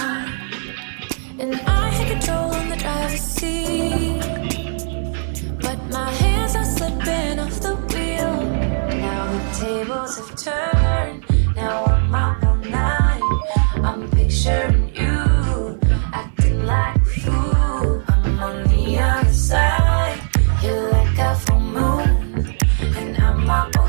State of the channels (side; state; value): left; silent; digital silence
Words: And I had control on the driver's seat, but my hands are slipping off the wheel. Now the tables have turned, now I'm up all night. I'm picturing you acting like a fool. I'm on the other side, you're like a full moon, and I'm up all